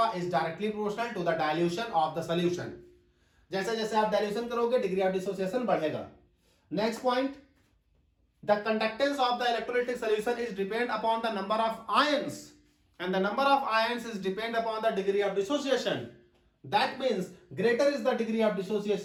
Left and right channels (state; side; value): identical; both; correlation 1.00